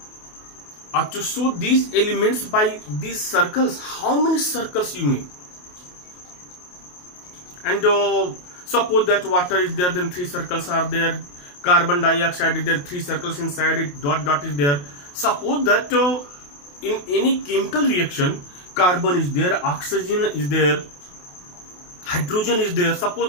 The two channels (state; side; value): late; right; 28 ms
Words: to show these elements by these circles? How many circles you make? And suppose that water is there, then three circles are there. Carbon dioxide is there, three circles inside it, dot dot is there. Suppose that in any chemical reaction, carbon is there, oxygen is there, hydrogen is there.